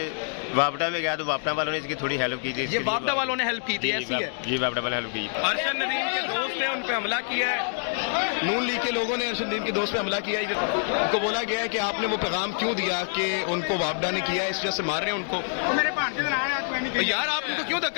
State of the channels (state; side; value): silent; right; digital silence